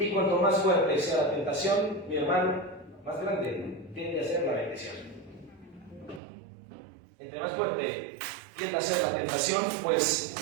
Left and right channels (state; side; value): drops out; left; at 6.2 s